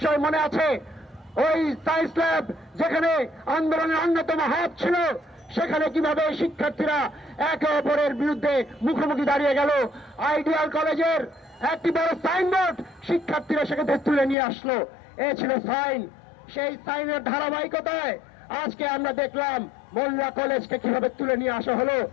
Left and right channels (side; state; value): right; drops out; at 14.4 s